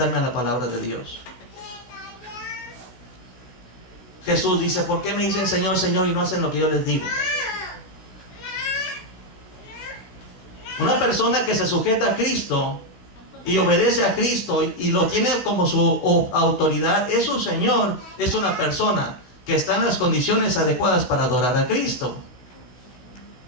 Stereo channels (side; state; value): right; late; 16 ms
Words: a la palabra de Dios. Jesús dice, ¿por qué me dicen Señor, Señor y no hacen lo que yo les digo? Una persona que se sujeta a Cristo y obedece a Cristo y lo tiene como su autoridad, es su Señor, es una persona que está en las condiciones adecuadas para adorar a Cristo.